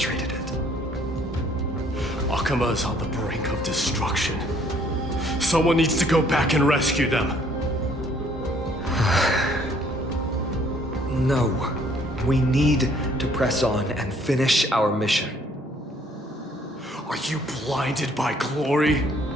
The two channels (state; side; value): normal; both; correlation 0.62